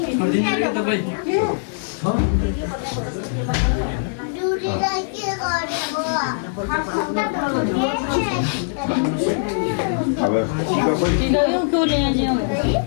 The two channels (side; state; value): right; silent; digital silence